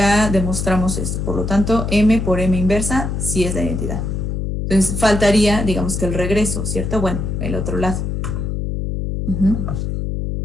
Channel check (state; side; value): noise; left; hum, 2 dB below the sound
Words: demostramos esto. Por lo tanto, M por M inversa sí es la identidad. Entonces faltaría, digamos que el regreso, ¿cierto? Bueno, el otro lado.